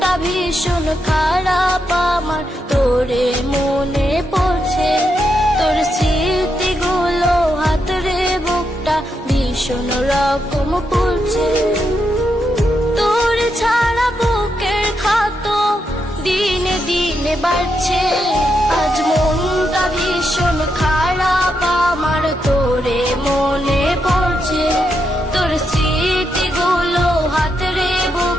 ভীষণ খারাপ আমার, তোরে মনে পড়ছে। তোর স্মৃতিগুলো হাতরে বুকটা ভীষণ রকম পড়ছে। তোর ছাড়া বুকের ক্ষত দিনে দিনে বাড়ছে। আজ মনটা ভীষণ খারাপ আমার, তোরে মনে পড়ছে। তোর স্মৃতিগুলো হাতরে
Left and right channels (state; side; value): normal; both; correlation 0.82